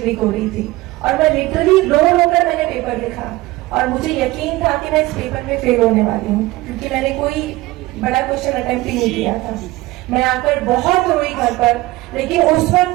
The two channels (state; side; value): quieter; left; 19.2 dB